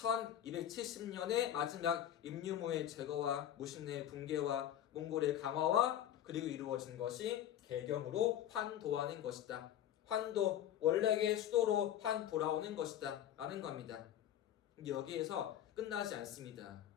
마지막 임유무의 제거와 무신의 붕괴와 몽골의 강화와 그리고 이루어진 것이 개경으로 환도하는 것이다. 환도, 원래의 수도로 환 돌아오는 것이다 라는 겁니다. 여기에서 끝나지 않습니다.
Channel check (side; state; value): right; quieter; 11.1 dB